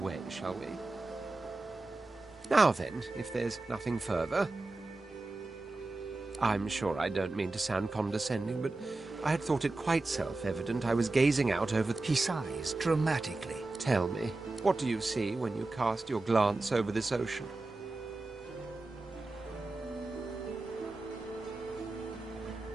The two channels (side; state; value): left; quieter; 3.1 dB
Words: shall we? Now then, if there's nothing further... I'm sure I don't mean to sound condescending, but I had thought it quite self-evident I was gazing out over... He sighs dramatically. Tell me, what do you see when you cast your glance over this ocean?